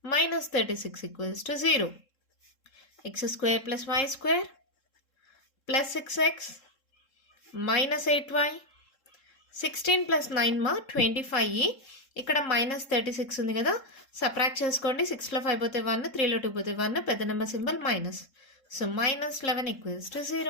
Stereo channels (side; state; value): right; late; 3.7 ms